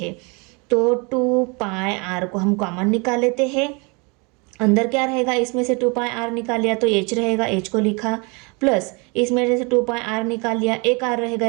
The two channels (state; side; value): quieter; left; 30.8 dB